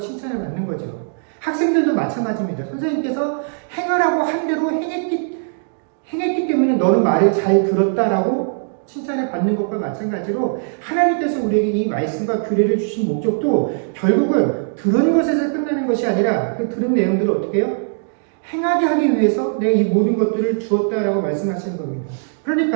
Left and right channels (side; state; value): left; silent; digital silence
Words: 받는 거죠. 학생들도 마찬가지입니다. 선생님께서 행하라고 한 대로 행했기 때문에 너는 말을 잘 들었다라고 칭찬을 받는 것과 마찬가지로 하나님께서 우리에게 이 말씀과 규례를 주신 목적도 결국은 들은 것에서 끝나는 것이 아니라 그 들은 내용들을 어떻게 해요? 행하게 하기 위해서 내가 이 모든 것들을 주었다라고 말씀하시는 겁니다.